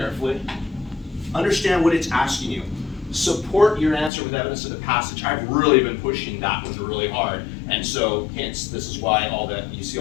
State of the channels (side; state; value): right; drops out; at 4.1 s